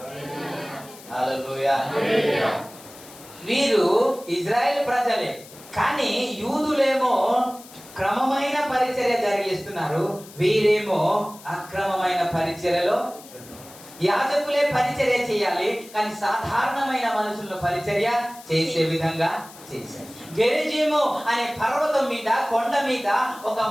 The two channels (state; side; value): noise; left; hiss, 19 dB below the sound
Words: హల్లెలూయా. వీరు ఇజ్రాయెల్ ప్రజలే, కానీ యూదులేమో క్రమమైన పరిచర్య జరిగిస్తున్నారు, వీరేమో అక్రమమైన పరిచర్యలో. యాజకులే పరిచర్య చేయాలి, కానీ సాధారణమైన మనుషులను పరిచర్య చేసే విధంగా చేశారు. గెరిజీము అనే పర్వతం మీద, కొండ మీద ఒక